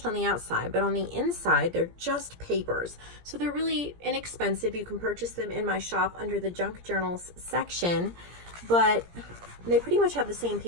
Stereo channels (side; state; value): left; late; 17 ms